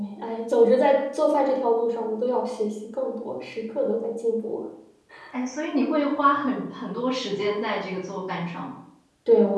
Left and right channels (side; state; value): both; identical; correlation 1.00